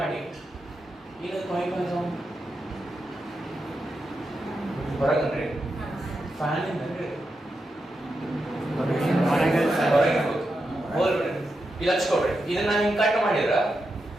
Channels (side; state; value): both; normal; correlation 0.87